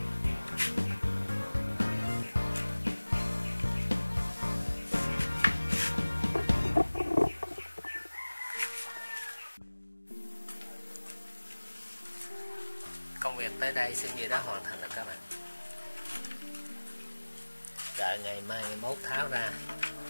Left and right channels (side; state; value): both; inverted; correlation -1.00